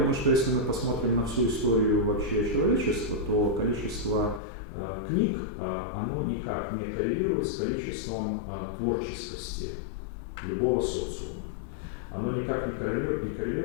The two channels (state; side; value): drops out; right; at 4.4 s